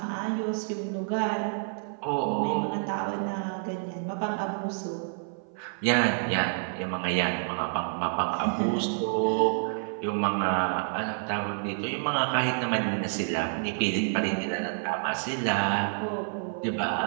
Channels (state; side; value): silent; left; 57 dB below the other